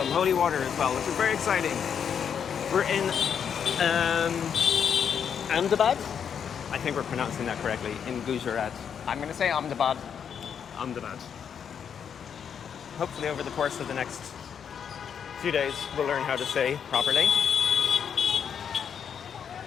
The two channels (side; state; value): right; quieter; 7.7 dB